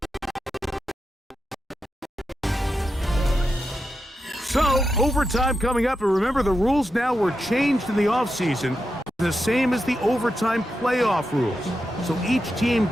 So, overtime coming up, and remember the rules now were changed in the offseason, the same as the overtime playoff rules. So each team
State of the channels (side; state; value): both; normal; correlation 0.88